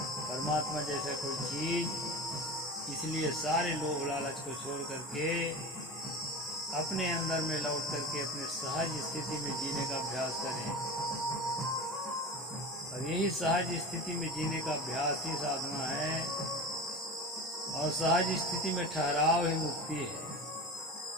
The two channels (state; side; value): normal; both; correlation 0.30